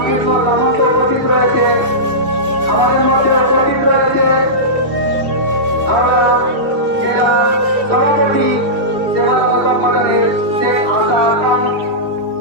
সামন্ত উপস্থিত রয়েছে। আমাদের মধ্যে উপস্থিত রয়েছে আমরা জেলা সভাপতি সেবা সংগঠনের শেখ আসাদ,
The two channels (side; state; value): left; late; 2.7 ms